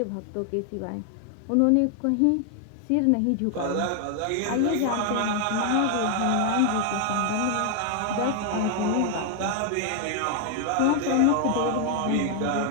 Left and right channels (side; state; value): both; different; correlation 0.00